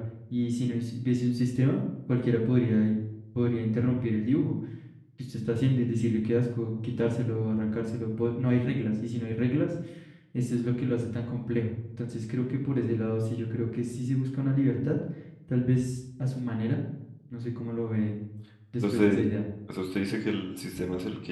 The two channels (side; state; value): both; identical; correlation 1.00